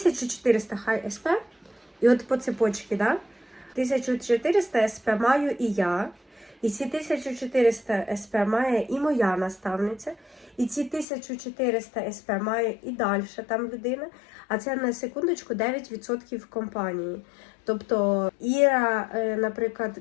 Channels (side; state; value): right; drops out; at 11.1 s